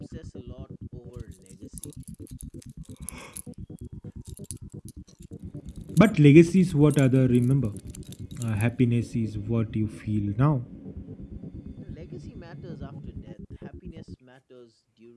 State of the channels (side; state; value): both; identical; correlation 1.00